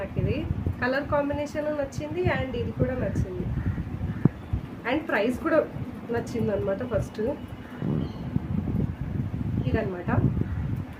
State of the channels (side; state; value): both; identical; correlation 1.00